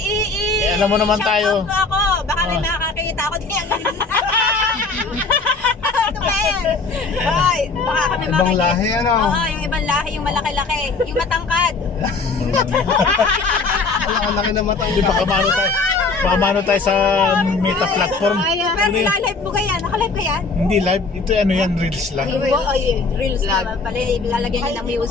alam mo naman tayo. Shout out mo ako. Baka may Oh. makakakita ako din. Ano ba yan? Hoy, baka kami Ibang lahi, ano? Oo, yung ibang lahi, yung malaki-laki. Yung matangkad. Ang laki na mata. Hindi baka maano tayo. Baka maano tayo sa meta platform. Pero nilalive mo ka yan? Nakalive ka yan? Hindi live. Ito ano yan, reels lang. Reels naman pala. Ilalagyan niya ng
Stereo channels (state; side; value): quieter; right; 4.1 dB